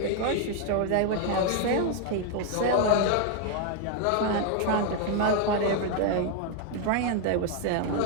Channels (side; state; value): both; different; correlation 0.00